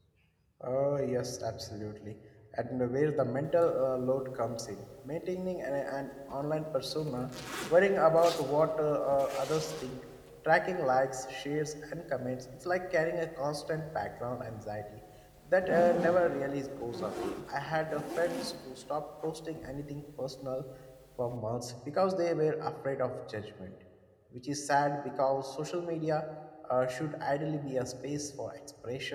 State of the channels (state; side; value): identical; both; correlation 1.00